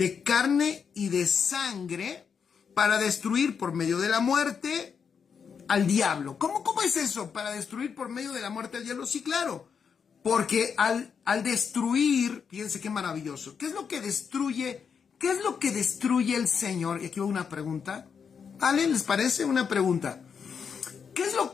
carne y de sangre para destruir por medio de la muerte al diablo. ¿Cómo es eso? Para destruir por medio de la muerte al diablo. Sí, claro. Porque al destruir, fíjense qué maravilloso. ¿Qué es lo que destruye? ¿Qué es lo que destruye el Señor? Y aquí va una pregunta. ¿Vale? ¿Les parece una pregunta? ¿Qué es lo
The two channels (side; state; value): right; quieter; 6.5 dB